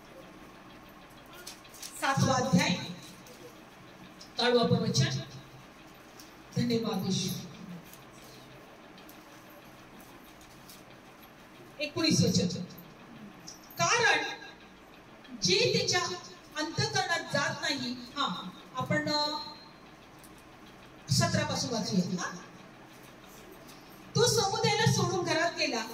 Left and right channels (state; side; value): identical; both; correlation 1.00